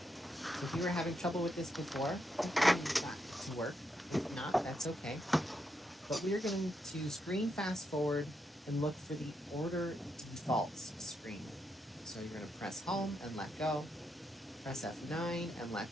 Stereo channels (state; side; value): normal; both; correlation 0.81